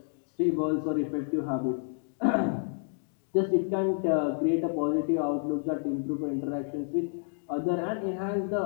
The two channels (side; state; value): right; silent; digital silence